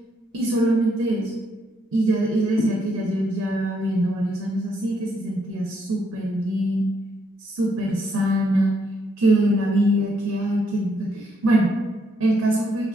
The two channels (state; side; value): normal; both; correlation 0.74